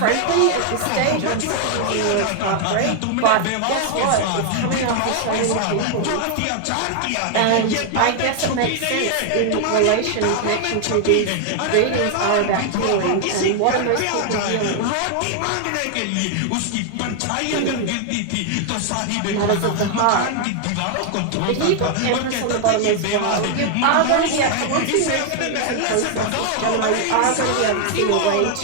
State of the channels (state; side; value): different; both; correlation 0.00